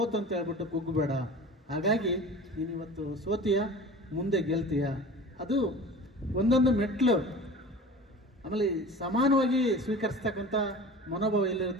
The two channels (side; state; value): both; normal; correlation 0.38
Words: ಅಂತ ಹೇಳ್ಬಿಟ್ಟು ಕುಗ್ಗು ಬೇಡ. ಹಾಗಾಗಿ ನೀನು ಇವತ್ತು ಸೋತೀಯ, ಮುಂದೆ ಗೆಲ್ತೀಯ. ಅದು ಒಂದೊಂದು ಮೆಟ್ಲು. ಆಮೇಲೆ ಸಮಾನವಾಗಿ ಸ್ವೀಕರಿಸ್ತಕ್ಕಂಥ ಮನೋಭಾವ